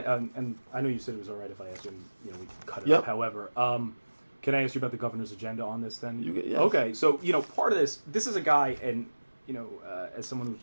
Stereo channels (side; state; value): both; inverted; correlation -1.00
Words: and I know you said it was all right if I asked you, we can cut it up. However, can I ask you about the governor's agenda on this then? Yes. Okay, so, part of this is a guy, and, as someone who